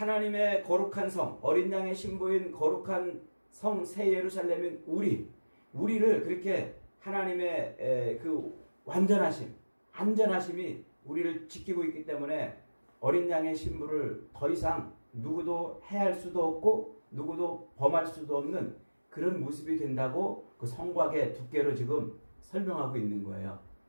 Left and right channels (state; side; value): inverted; both; correlation -1.00